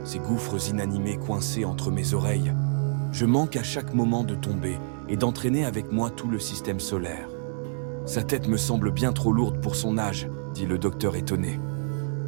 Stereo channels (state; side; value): silent; left; digital silence